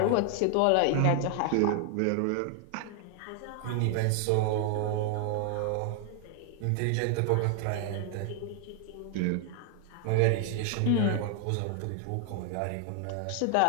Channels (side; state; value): both; different; correlation 0.00